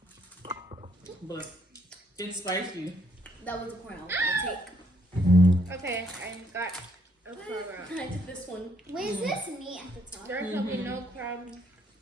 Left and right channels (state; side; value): normal; both; correlation 0.69